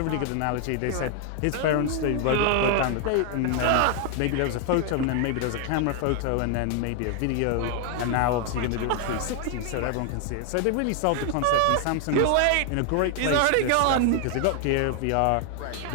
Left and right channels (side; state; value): both; different; correlation 0.00